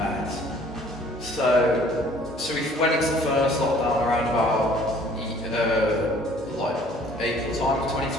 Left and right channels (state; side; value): normal; both; correlation 0.56